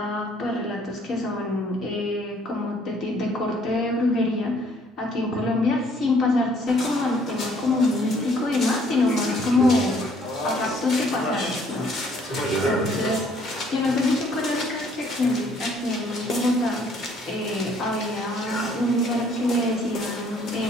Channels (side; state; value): both; normal; correlation 0.62